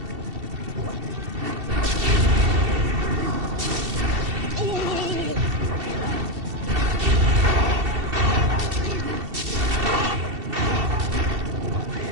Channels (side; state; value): left; late; 2.7 ms